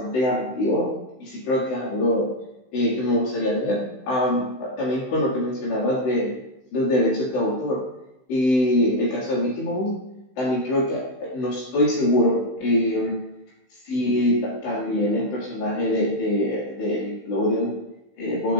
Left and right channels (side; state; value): right; late; 16 ms